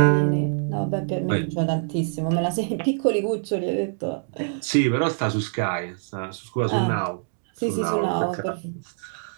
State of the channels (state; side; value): silent; left; digital silence